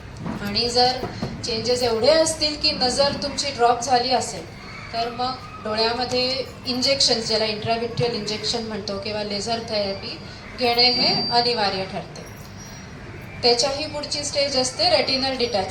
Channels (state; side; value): identical; both; correlation 1.00